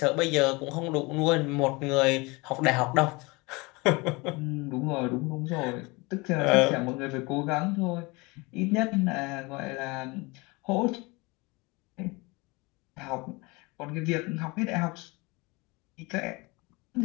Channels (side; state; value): right; quieter; 25.5 dB